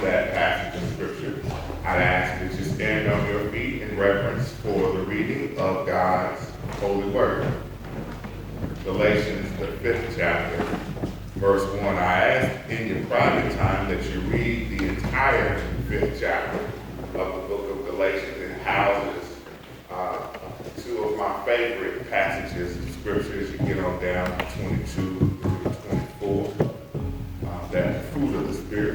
that passage of Scripture, I'd ask that you stand on your feet in reverence for the reading of God's holy word. Galatians, the 5th chapter, verse 1. I ask in your private time that you read the entire 5th chapter of the book of Galatians. It houses two of my favorite passages of Scripture as you get on down to 22 to 24. That fruit of the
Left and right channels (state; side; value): identical; both; correlation 1.00